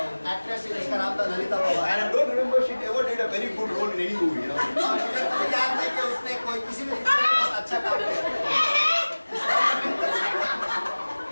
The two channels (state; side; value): inverted; both; correlation -1.00